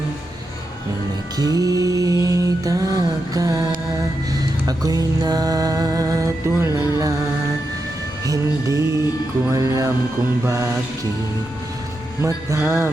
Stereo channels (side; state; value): both; normal; correlation 0.87